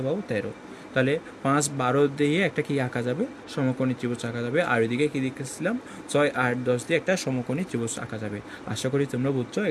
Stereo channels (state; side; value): identical; both; correlation 1.00